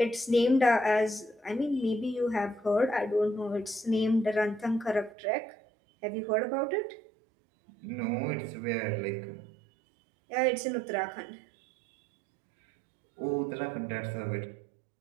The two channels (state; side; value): drops out; left; at 5.2 s